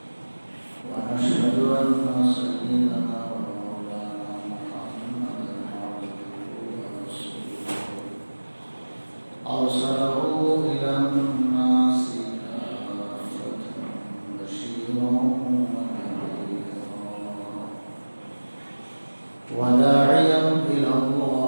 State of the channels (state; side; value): inverted; both; correlation -1.00